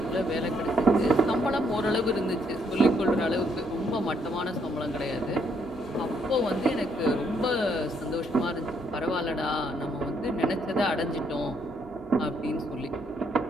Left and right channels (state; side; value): normal; both; correlation 0.72